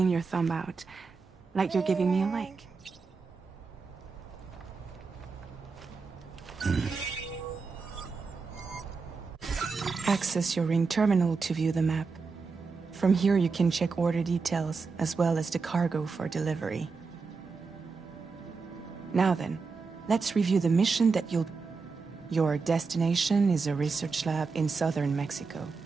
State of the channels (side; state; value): left; quieter; 4.7 dB